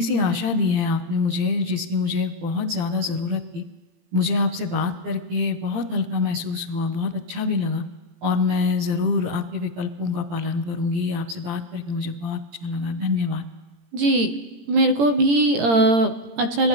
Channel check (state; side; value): late; left; 18 ms